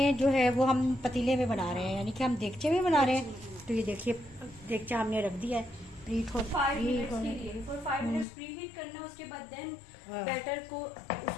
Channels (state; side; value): drops out; right; at 8.2 s